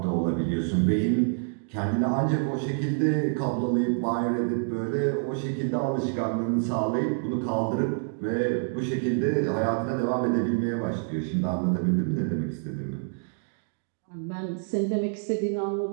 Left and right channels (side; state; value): left; silent; 60 dB below the other